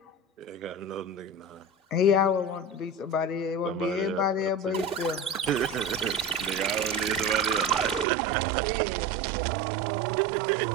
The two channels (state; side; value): drops out; left; at 8.1 s